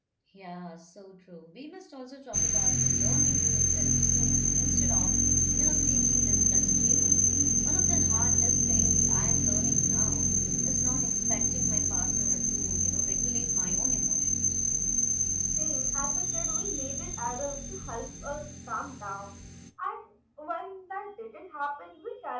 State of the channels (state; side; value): identical; both; correlation 1.00